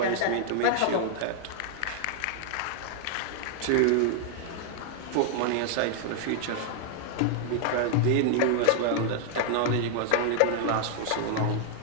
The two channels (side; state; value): both; different; correlation 0.00